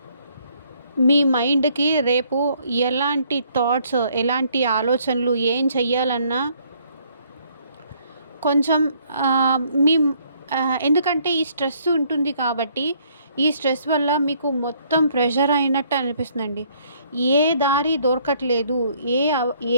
మీ మైండ్కి రేపు ఎలాంటి థాట్స్, ఎలాంటి ఆలోచనలు, ఏం చెయ్యాలన్నా కొంచెం మీ ఎందుకంటే ఈ స్ట్రెస్ ఉంటుంది కాబట్టి ఈ స్ట్రెస్ వల్ల మీకు మొత్తం ప్రెషర్ అయినట్టు అనిపిస్తుందండి. ఏ దారి దొరకట్లేదు. ఏ అవ్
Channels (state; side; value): inverted; both; correlation -0.65